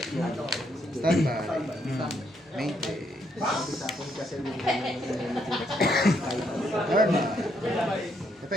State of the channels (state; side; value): normal; both; correlation 0.74